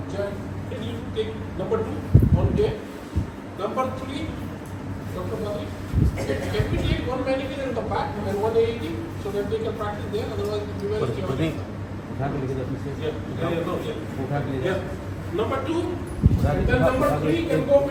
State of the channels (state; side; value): identical; both; correlation 1.00